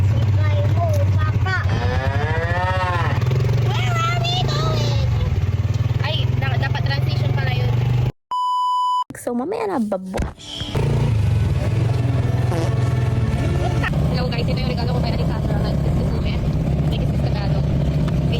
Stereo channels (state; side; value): identical; both; correlation 1.00